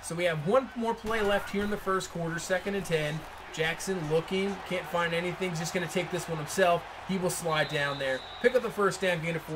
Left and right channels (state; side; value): identical; both; correlation 1.00